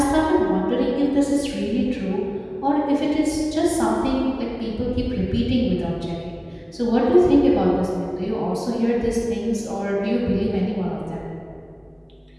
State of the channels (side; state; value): both; identical; correlation 1.00